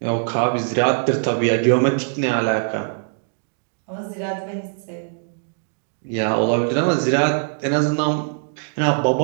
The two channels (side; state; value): left; silent; digital silence